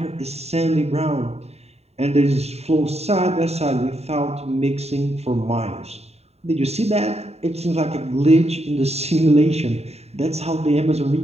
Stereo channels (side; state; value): left; late; 0.30 ms